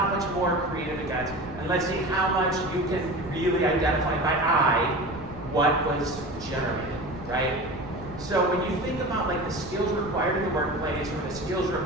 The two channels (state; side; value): noise; right; rumble, 15 dB below the sound